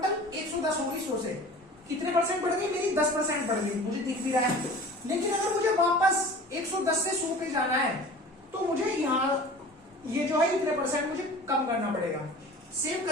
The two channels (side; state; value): both; normal; correlation 0.41